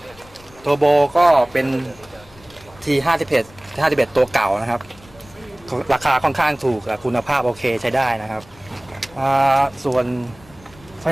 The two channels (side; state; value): left; noise; rumble, 25 dB below the sound